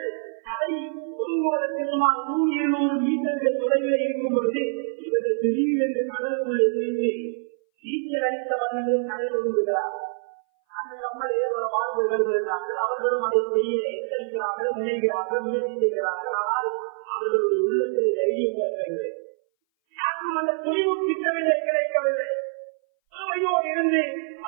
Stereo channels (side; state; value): left; silent; 59 dB below the other